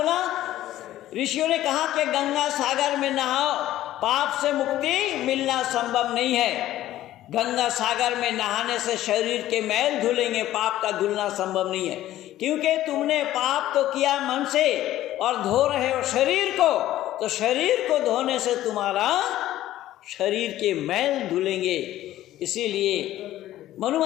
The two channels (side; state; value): right; quieter; 14.0 dB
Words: ऋषियों ने कहा कि गंगा सागर में नहाओ, पाप से मुक्ति मिलना संभव नहीं है। गंगा सागर में नहाने से शरीर के मैल धुलेंगे, पाप का धुलना संभव नहीं है। क्योंकि तुमने पाप तो किया मन से और धो रहे हो शरीर को, तो शरीर को धोने से तुम्हारा शरीर के मैल धुलेंगे। इसीलिए मनु